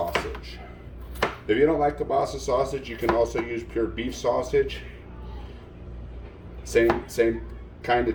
If you don't like kebasa sausage, you can also use pure beef sausage. Same kind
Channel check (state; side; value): identical; both; correlation 1.00